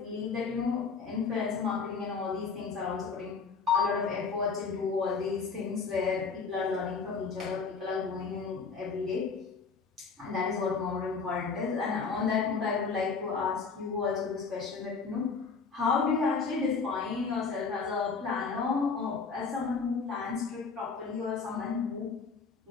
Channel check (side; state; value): right; quieter; 5.1 dB